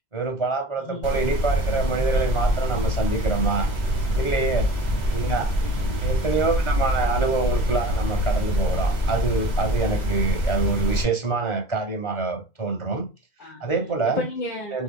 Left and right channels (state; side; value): late; right; 2.0 ms